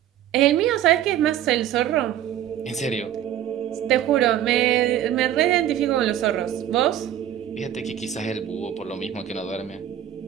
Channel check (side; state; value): left; quieter; 11.1 dB